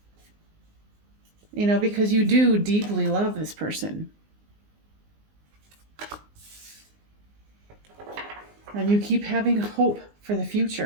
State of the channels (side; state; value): left; late; 19 ms